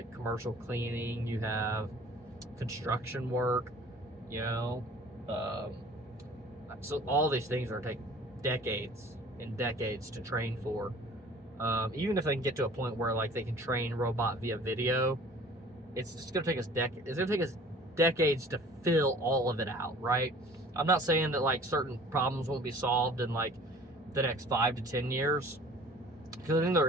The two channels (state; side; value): normal; both; correlation 0.48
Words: commercial cleaning, you have construction work, you know, so all these things are take decades and decades to train for. Even if they can get to a point where like they can train robot via video, it's just gonna take us decades to fill all of it out, right? I'm not saying that like certain problems won't be solved in like the next 5 to 10 years, because I think there